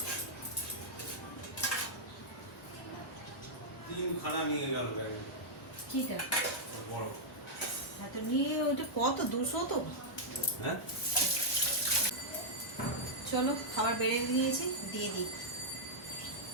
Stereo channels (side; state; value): both; normal; correlation -0.06